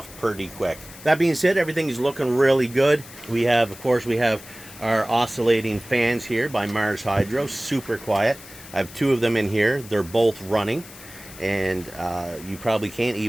pretty quick. That being said, everything is looking really good. We have, of course, we have our oscillating fans here by Mars Hydro, super quiet. I have two of them in here. They're both running, and you probably can't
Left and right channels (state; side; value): noise; left; hiss, 18 dB below the sound